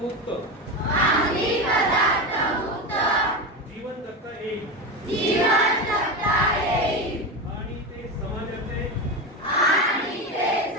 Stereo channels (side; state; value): both; normal; correlation 0.19